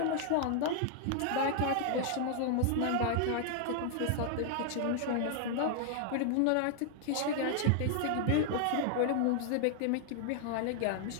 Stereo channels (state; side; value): different; both; correlation 0.00